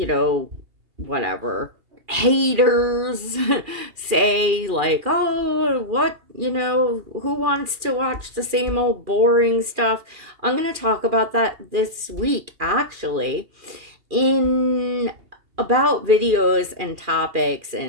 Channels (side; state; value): left; late; 2.4 ms